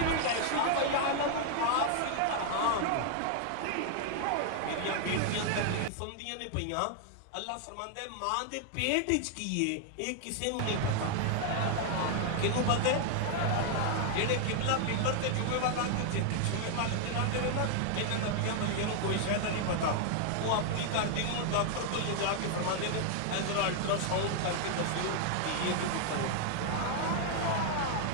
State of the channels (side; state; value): both; different; correlation 0.00